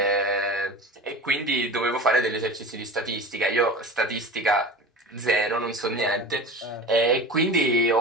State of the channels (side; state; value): both; normal; correlation 0.34